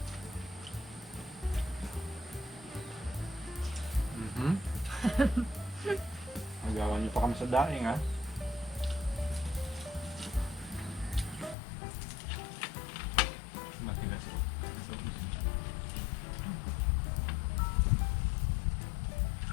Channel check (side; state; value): right; drops out; at 11.6 s